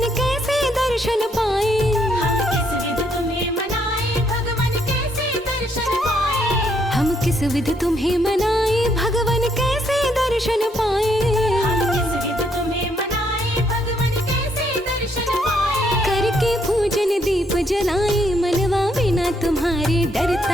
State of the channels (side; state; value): both; normal; correlation 0.72